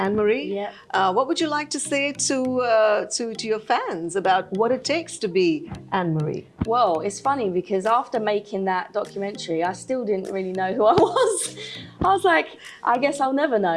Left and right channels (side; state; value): both; identical; correlation 1.00